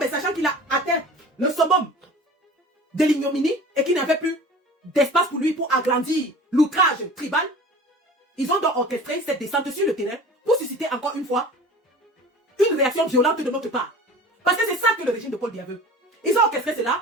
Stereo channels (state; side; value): normal; both; correlation 0.40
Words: sachant qu'il a atteint le summum de l'ignominie et qu'il n'avait plus d'espace pour lui pour agrandir l'outrage tribal, ils ont donc orchestré cette descente sur le terrain pour susciter encore une fois une réaction violente de notre part. Parce que c'est ça que le régime de Paul Biya veut. Ils ont orchestré